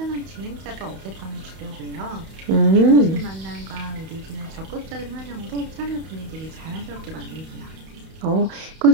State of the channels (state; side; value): late; left; 31 ms